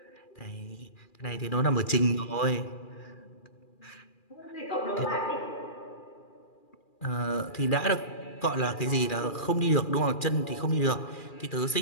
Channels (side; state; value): right; late; 2.4 ms